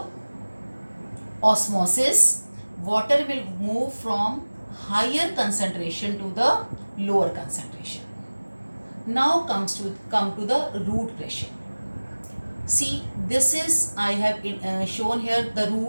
osmosis. Water will move from higher concentration to the lower concentration. Now come to the root pressure. See, this is, I have shown here the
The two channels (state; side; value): inverted; both; correlation -1.00